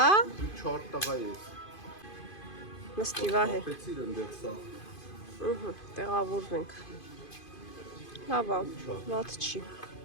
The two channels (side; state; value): right; late; 2.5 ms